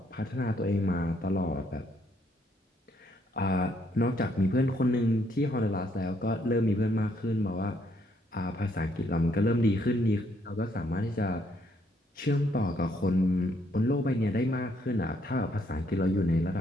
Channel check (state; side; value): normal; both; correlation 0.70